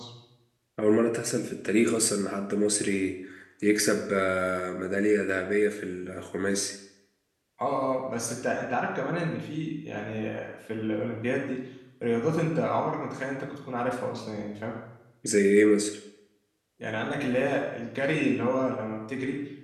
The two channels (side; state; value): both; identical; correlation 1.00